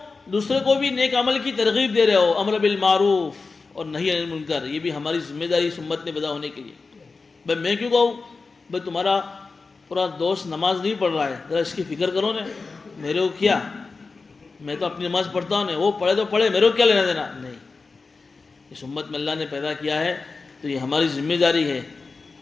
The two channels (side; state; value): right; quieter; 4.2 dB